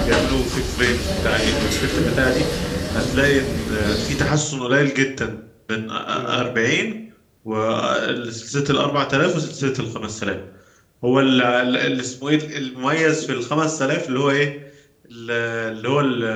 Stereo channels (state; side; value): identical; both; correlation 1.00